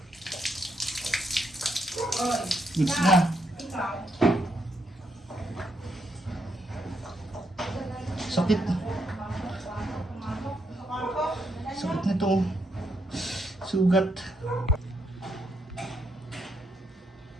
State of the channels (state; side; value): normal; both; correlation 0.78